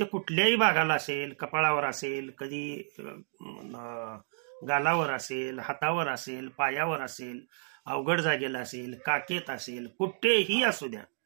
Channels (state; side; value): silent; left; digital silence